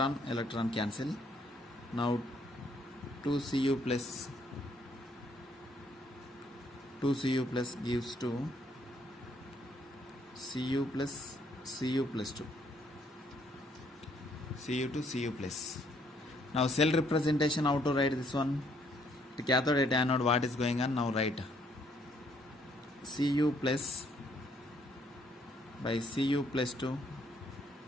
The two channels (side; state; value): both; normal; correlation 0.68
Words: cancel. Now 2Cu plus gives to Cu plus 2. Cu to Cu plus. Now cell representation, how to write this one? The cathode at anode, what is going on? Now write Cu plus by Cu plus 2,